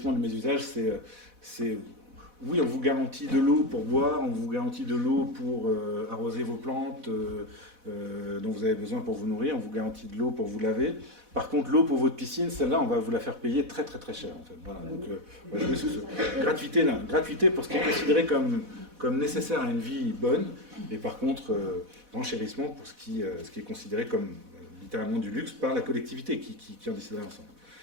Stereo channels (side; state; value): left; late; 4.1 ms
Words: du mésusage, c'est oui, on vous garantit de l'eau pour boire, on vous garantit de l'eau pour arroser vos plantes dont vous avez besoin pour vous nourrir, on vous garantit de l'eau pour vous laver. Par contre, l'eau pour votre piscine, celle-là, on va vous la faire payer très très très cher, en fait. Voilà, donc on va jouer sur ce gratuité pour ce qui est considéré comme nécessaire à une vie bonne, et par contre, renchérissement pour ce qui est considéré comme littéralement du luxe par la collectivité qui en déciderait ensemble.